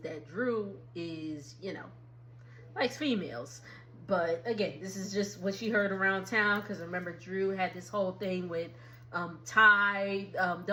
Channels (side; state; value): both; identical; correlation 1.00